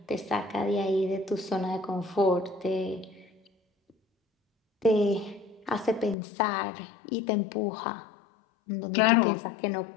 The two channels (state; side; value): drops out; right; at 6.2 s